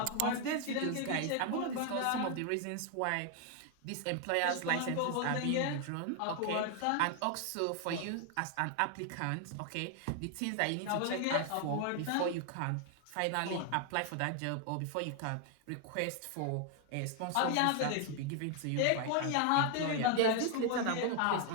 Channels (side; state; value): both; different; correlation 0.00